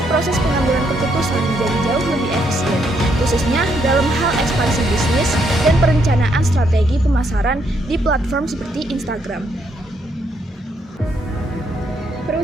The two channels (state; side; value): normal; both; correlation 0.74